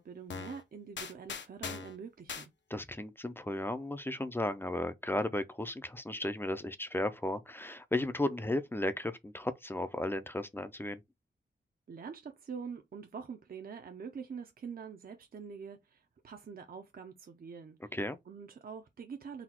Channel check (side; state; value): both; normal; correlation 0.73